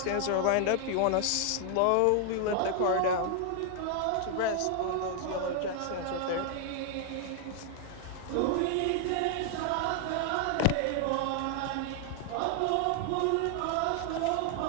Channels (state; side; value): different; both; correlation 0.00